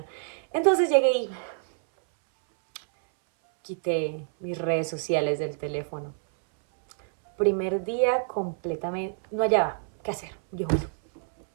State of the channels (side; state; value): left; silent; 60 dB below the other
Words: Entonces llegué y quité mis redes sociales del teléfono. Primer día completamente, no hallaba qué hacer. Yo, bueno,